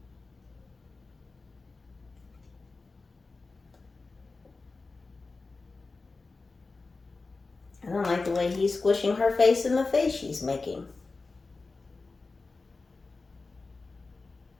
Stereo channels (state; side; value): quieter; right; 3.8 dB